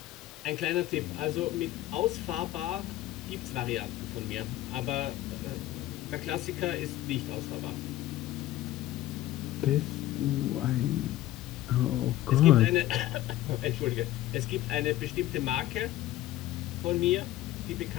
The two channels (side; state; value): right; quieter; 14.8 dB